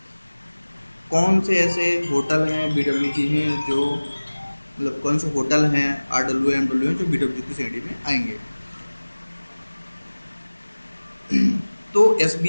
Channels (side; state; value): both; inverted; correlation -1.00